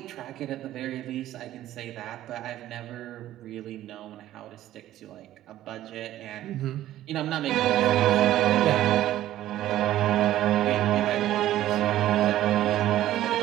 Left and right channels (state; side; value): quieter; left; 13.6 dB